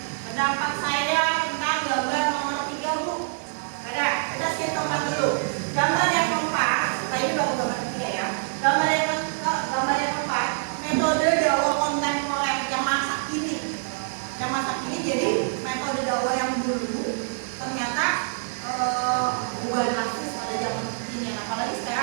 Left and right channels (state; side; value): silent; left; digital silence